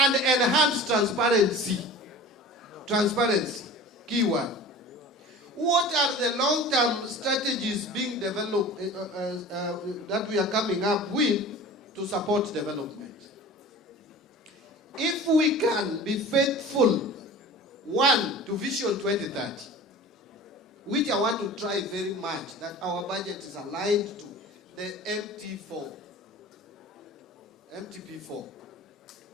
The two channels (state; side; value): normal; both; correlation 0.39